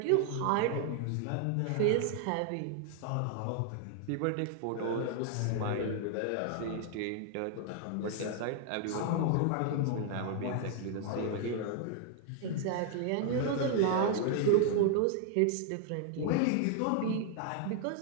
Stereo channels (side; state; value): both; different; correlation 0.00